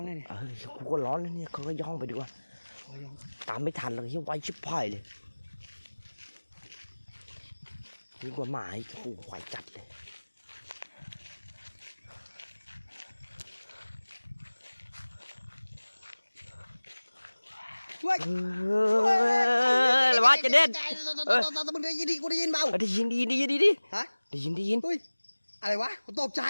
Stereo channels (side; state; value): both; inverted; correlation -1.00